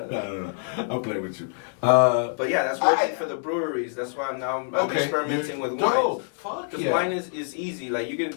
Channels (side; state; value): right; silent; digital silence